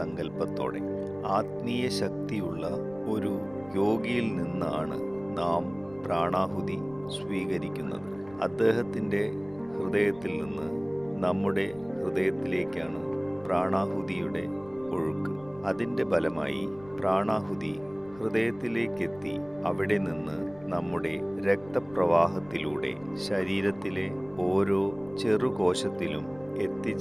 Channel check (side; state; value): left; noise; rumble, 22 dB below the sound